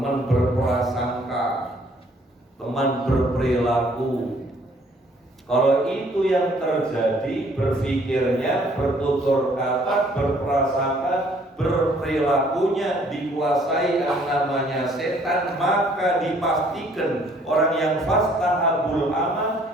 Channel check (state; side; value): normal; both; correlation 0.61